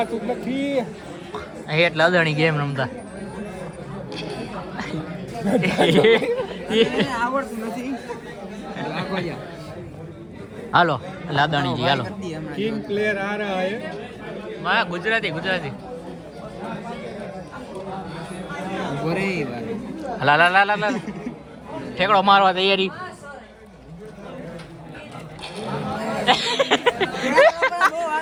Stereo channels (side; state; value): both; identical; correlation 1.00